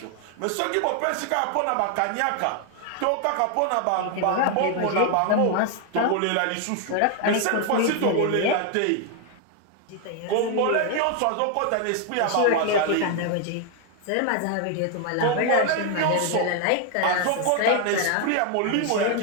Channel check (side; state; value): both; different; correlation 0.00